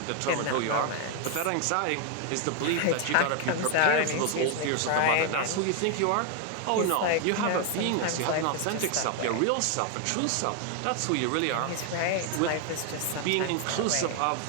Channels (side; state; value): both; different; correlation 0.00